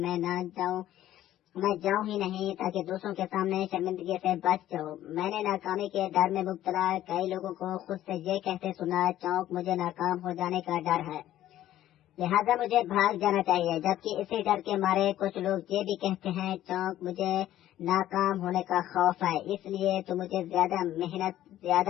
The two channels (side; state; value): right; quieter; 13.1 dB